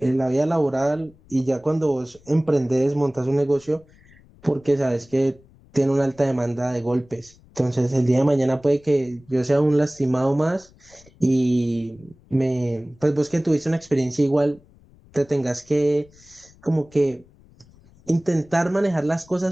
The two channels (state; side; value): noise; left; rumble, 27 dB below the sound